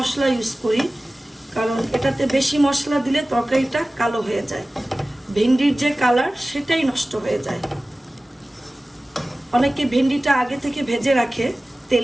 ইউজ করি, কারণ এটাতে বেশি মশলা দিলে তরকারিটা কালো হয়ে যায়, ভেন্ডির যে কালার সেটাই নষ্ট হয়ে যায়। অনেকে ভেন্ডিটা আগে থেকে ভেজে রাখে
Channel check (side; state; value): both; normal; correlation 0.97